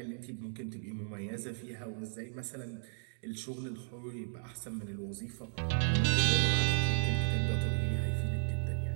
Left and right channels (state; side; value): silent; left; digital silence